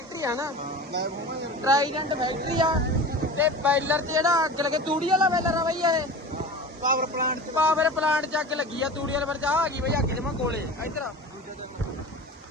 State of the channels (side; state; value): both; normal; correlation 0.34